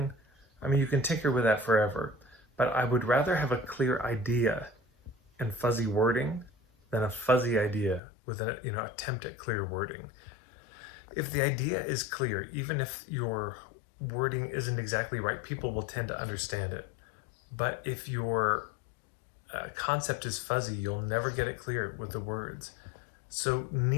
you can tinker with that forever, but I would rather have a clear idea and fuzzy wording than a fuzzy idea with an attempt at clear wording. If the idea is clear, even if your wording isn't exactly right, people will tend to understand it. But if your concept is fuzzy, you'll never get it clear with the words. So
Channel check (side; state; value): right; drops out; at 8.0 s